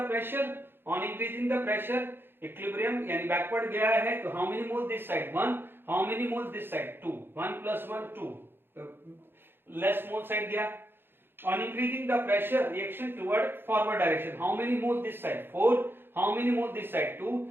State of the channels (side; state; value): left; late; 0.10 ms